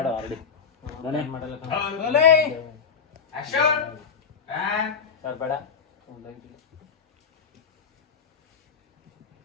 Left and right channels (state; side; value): quieter; right; 6.3 dB